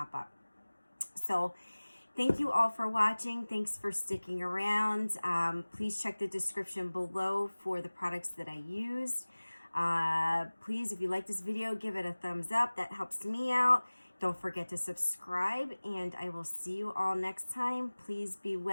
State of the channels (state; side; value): inverted; both; correlation -1.00